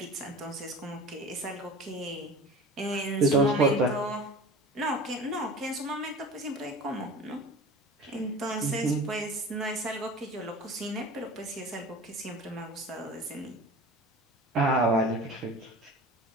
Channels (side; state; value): both; normal; correlation 0.37